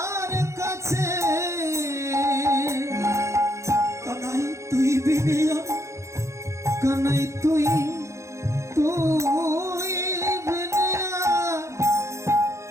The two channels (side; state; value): left; late; 0.14 ms